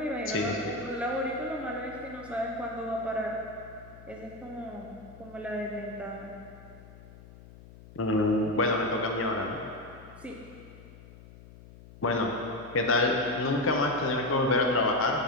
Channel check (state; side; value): noise; left; hum, 19 dB below the sound